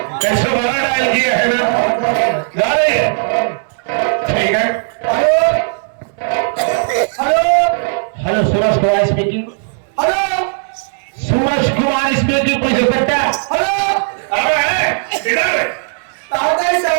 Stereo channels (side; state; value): left; silent; digital silence